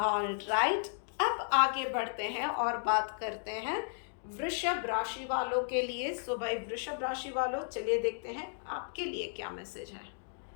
right, अब आगे बढ़ते हैं और बात करते हैं वृषभ राशि वालों के लिए। भाई वृषभ राशि वालों, चलिए देखते हैं आपके लिए क्या मैसेज है।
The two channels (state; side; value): silent; right; digital silence